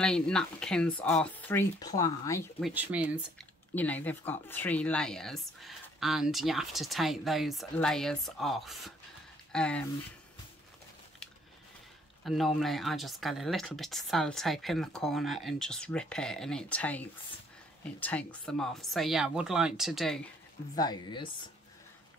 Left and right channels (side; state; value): both; normal; correlation 0.63